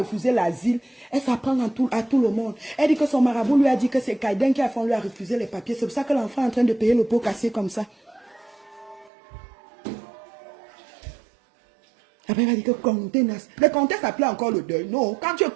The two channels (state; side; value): drops out; left; at 9.1 s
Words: l'asile, elle s'apprend à tout le monde. Elle dit que son marabout lui a dit que c'est Kaiden qui a fait, on lui a refusé les papiers. C'est pour ça que l'enfant est en train de payer le pot cassé comme ça. Après, elle a dit que contenance. Le contexte appelait encore le deuil. Non, quand tu es